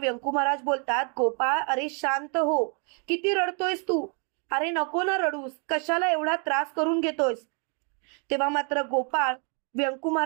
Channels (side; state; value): left; quieter; 38.9 dB